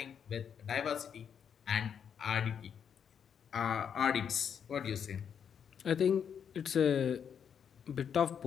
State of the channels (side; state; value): right; quieter; 7.7 dB